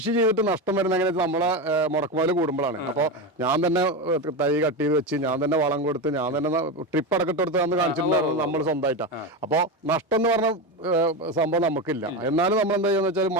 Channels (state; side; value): normal; both; correlation 0.17